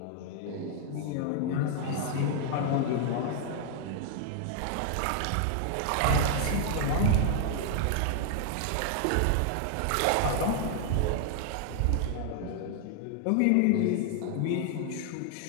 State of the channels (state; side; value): different; both; correlation 0.00